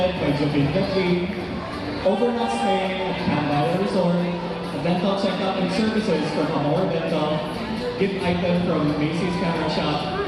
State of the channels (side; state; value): both; identical; correlation 1.00